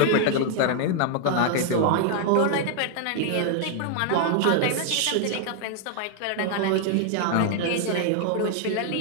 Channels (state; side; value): different; both; correlation 0.00